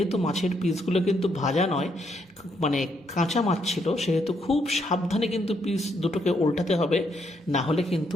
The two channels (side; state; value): both; normal; correlation 0.75